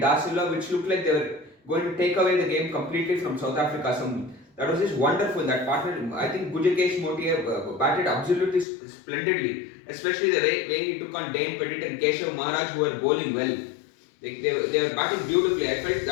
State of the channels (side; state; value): right; drops out; at 8.7 s